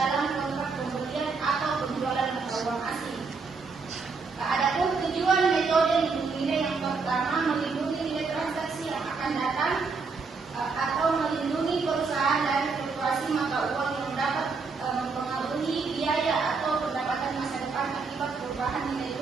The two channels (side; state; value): left; quieter; 4.6 dB